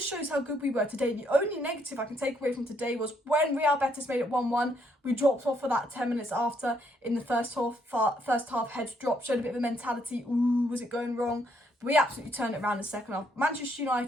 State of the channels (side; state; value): both; normal; correlation 0.72